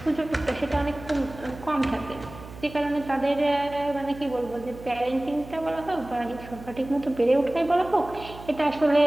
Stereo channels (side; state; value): right; noise; hum, 16 dB below the sound